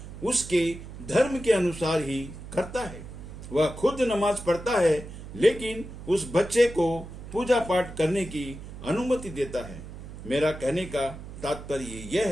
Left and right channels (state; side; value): noise; right; hum, 12 dB below the sound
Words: उसके धर्म के अनुसार ही करता है। वह खुद नमाज पढ़ता है, लेकिन उस बच्चे को पूजा पाठ करने की अनुमति देता है। मेरा कहने का तात्पर्य यह